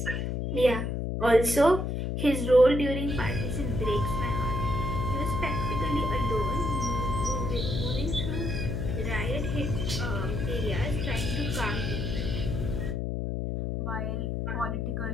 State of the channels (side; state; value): left; noise; hum, 1 dB below the sound